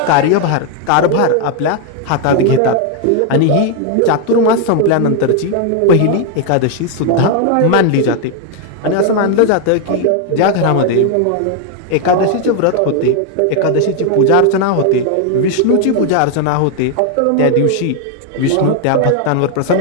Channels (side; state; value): both; different; correlation 0.01